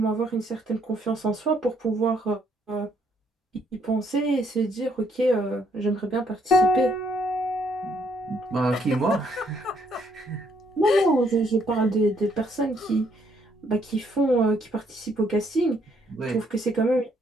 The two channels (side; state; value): both; normal; correlation 0.69